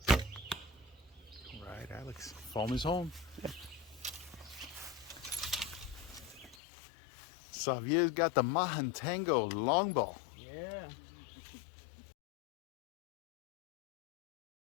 All right, Alex. Home is home. Xavier's got the Mahantango longbow. Yeah.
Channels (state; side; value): drops out; right; at 6.6 s